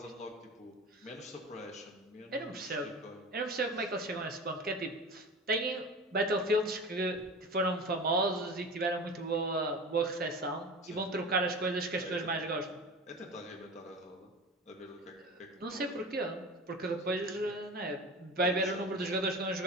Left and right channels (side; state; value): both; normal; correlation 0.33